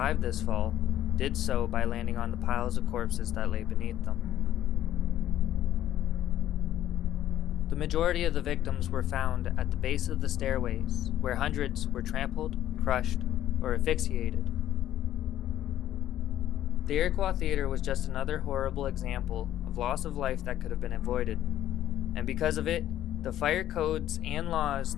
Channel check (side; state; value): right; quieter; 12.2 dB